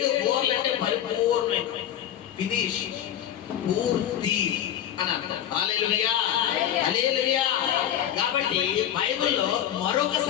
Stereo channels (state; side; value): quieter; right; 10.7 dB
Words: బోర్లు అంటే పరిపూర్ణమైన, ఫినిష్, పూర్తి అని అర్థం. హల్లెలూయా, హల్లెలూయా. కాబట్టి బైబిల్లో మరొక